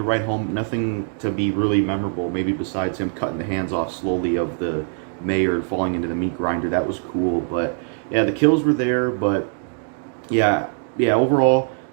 write home, nothing to be really memorable, maybe besides him cutting the hands off slowly of the mayor and falling into the meat grinder. That was cool, but yeah, the kills were there, but yeah, overall,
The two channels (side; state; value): left; silent; 56 dB below the other